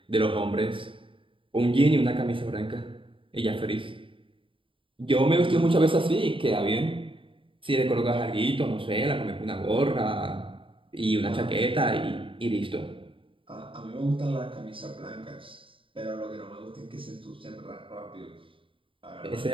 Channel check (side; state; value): left; late; 0.25 ms